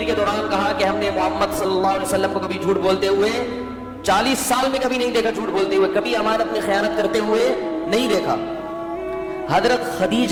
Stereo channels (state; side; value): identical; both; correlation 1.00